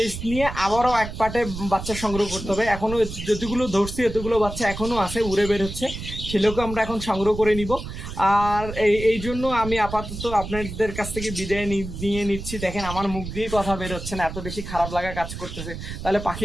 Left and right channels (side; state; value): right; noise; rumble, 9 dB below the sound